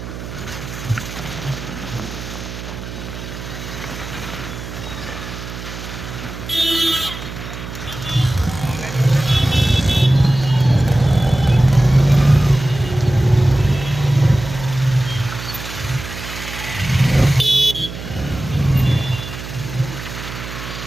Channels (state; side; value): noise; right; hum, 10 dB below the sound